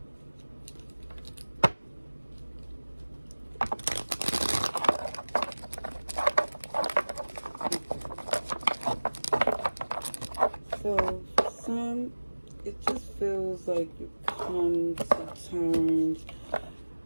So for some, it just feels like you come to terms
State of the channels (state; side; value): inverted; both; correlation -1.00